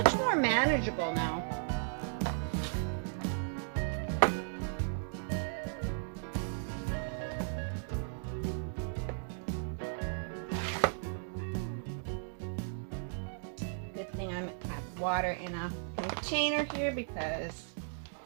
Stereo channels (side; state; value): left; silent; digital silence